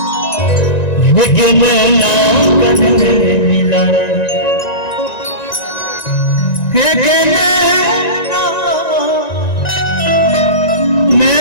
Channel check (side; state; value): right; late; 1.9 ms